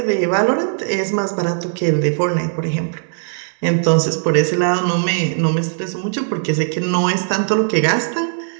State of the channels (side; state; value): left; silent; digital silence